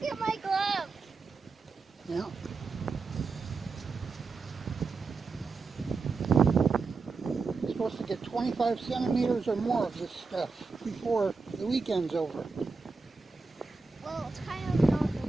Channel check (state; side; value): quieter; left; 4.3 dB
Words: at my glove. Yeah. You're supposed to get 25 centimeters or more of this stuff before the weekend's over. Well, it's kind of not the